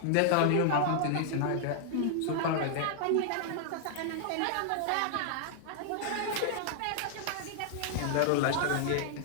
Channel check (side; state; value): both; different; correlation -0.01